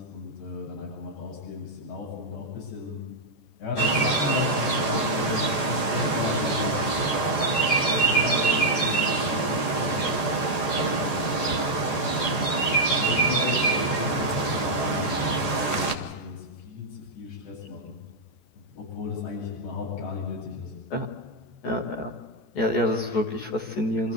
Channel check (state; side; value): late; right; 14 ms